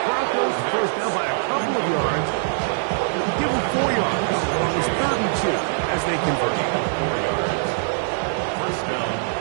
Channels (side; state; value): left; silent; digital silence